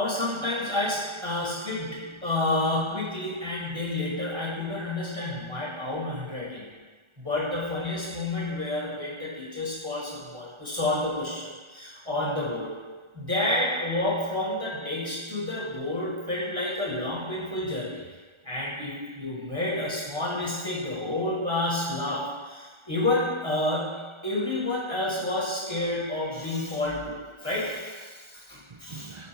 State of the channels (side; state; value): left; late; 1.4 ms